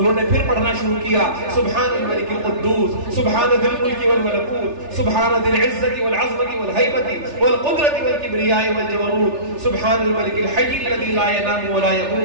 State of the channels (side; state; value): left; late; 3.4 ms